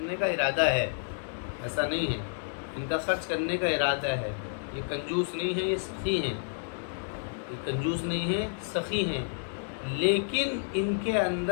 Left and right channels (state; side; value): silent; right; digital silence